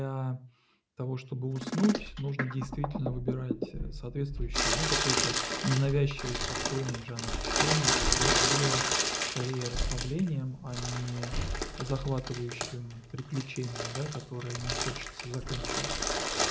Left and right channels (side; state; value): both; identical; correlation 1.00